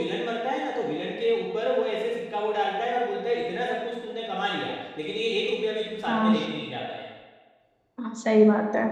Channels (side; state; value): both; identical; correlation 1.00